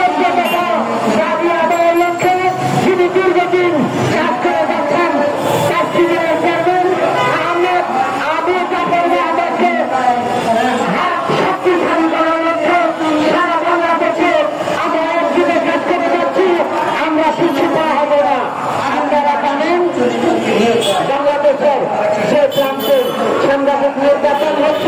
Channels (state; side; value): identical; both; correlation 1.00